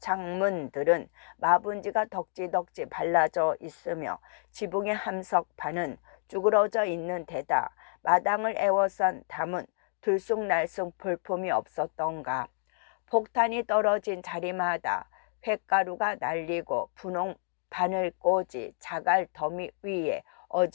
마분지가 덕지덕지 발라져 있으며 지붕의 함석판은 쭈그러져 있는 데다 마당을 에워싼 담은 들쑥날쑥 볼품이 없었던가. 폭탄이 떨어진 자리마다 횟가루가 날리고 분홍 바늘꽂이 자갈 더미 위에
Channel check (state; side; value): silent; right; digital silence